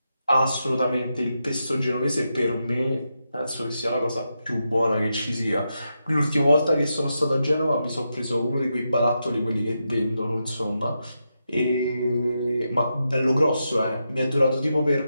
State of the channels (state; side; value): inverted; both; correlation -0.86